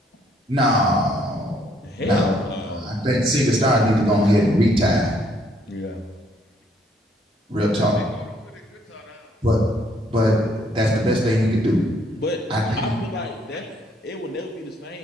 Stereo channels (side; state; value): both; normal; correlation 0.67